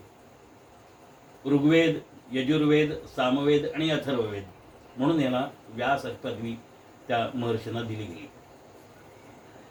ऋग्वेद, यजुर्वेद, सामवेद आणि अथर्ववेद, म्हणून याला व्यास पदवी त्या महर्षींना दिली गेली.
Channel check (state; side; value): identical; both; correlation 1.00